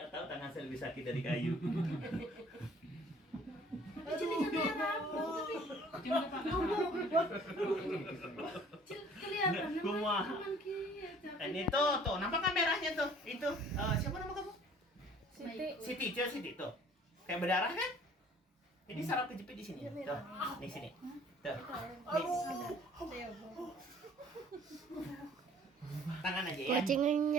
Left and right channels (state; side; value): normal; both; correlation 0.54